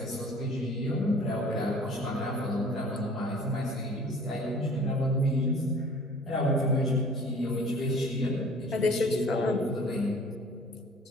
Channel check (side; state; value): both; normal; correlation 0.49